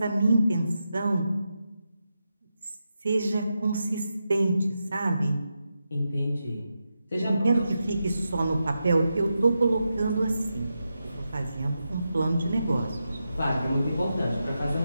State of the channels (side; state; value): both; inverted; correlation -0.88